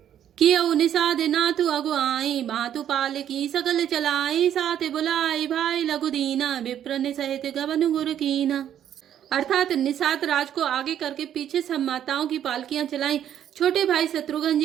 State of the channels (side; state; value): left; quieter; 10.2 dB